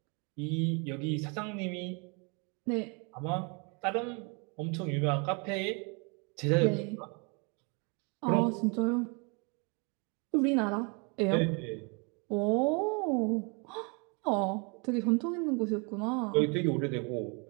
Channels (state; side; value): quieter; left; 33.1 dB